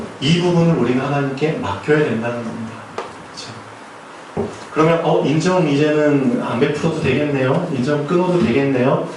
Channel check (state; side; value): identical; both; correlation 1.00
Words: 이 부분을 우리는 하나님께 맡겨야 된다는 겁니다. 그렇죠? 그러면 인정 이제는 안 베풀어도 되겠네요. 인정 끊어도 되겠네요.